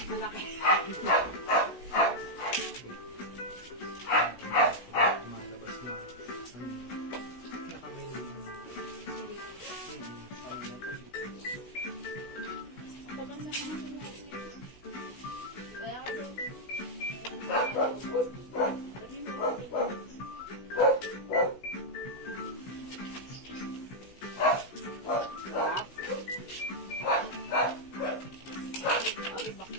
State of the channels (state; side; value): late; right; 16 ms